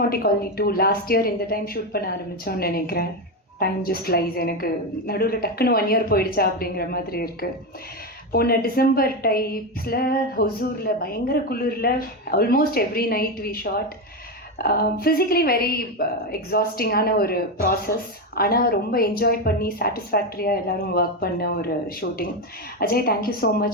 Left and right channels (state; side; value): normal; both; correlation 0.12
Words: colony 2 last year இந்த டைம் ஷூட் பண்ண ஆரம்பித்தோன்னு நினைக்கிறேன். Time just lies. எனக்கு நடுவில் டக்குன்னு 1 year போயிடுச்சா அப்படிங்கிற மாதிரி இருக்குது. போன டிசம்பர் டைப்ஸில் ஹொசூரில் பயங்கர குளிரில் almost every night we shot. Physically very எக்ஸாஸ்டிங்கான ஒரு ப்ராசஸ், ஆனால் ரொம்ப என்ஜாய் பண்ணி சாட்டிஸ்ஃபேக்டரியாக எல்லோரும் ஒர்க் பண்ண ஒரு shooting. Ajay, thank you so